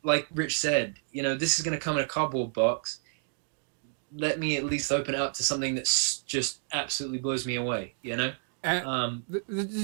like Rich said, this is going to come in a cardboard box. Let me at least open it up to something that's just absolutely blows me away,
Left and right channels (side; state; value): left; silent; digital silence